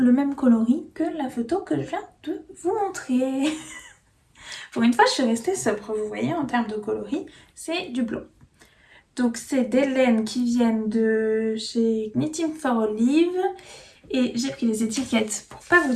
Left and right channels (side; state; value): both; identical; correlation 1.00